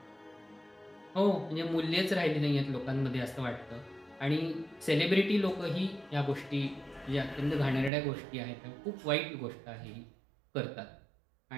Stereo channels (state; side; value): drops out; left; at 7.9 s